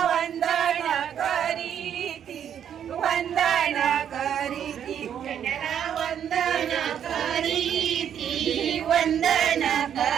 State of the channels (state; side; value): quieter; left; 9.1 dB